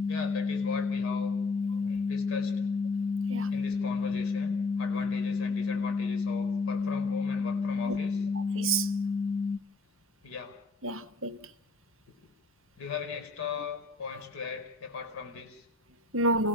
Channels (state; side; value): quieter; right; 3.1 dB